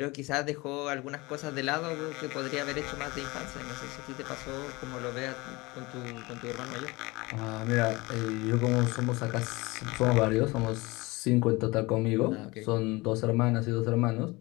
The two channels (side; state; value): right; quieter; 22.9 dB